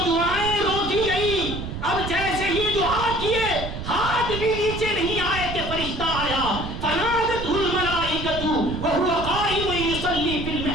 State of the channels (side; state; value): right; noise; rumble, 7 dB below the sound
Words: دعائیں روکی گئی، اب جیسے ہی دعا کیے ہاتھ بھی نیچے نہیں آئے کہ فرشتہ آیا، فنادتہ الملائکۃ وہو قائم یصلی فی